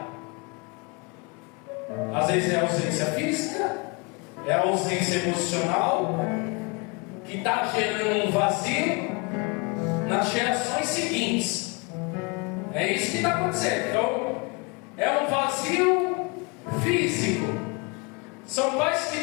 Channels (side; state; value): right; quieter; 30.2 dB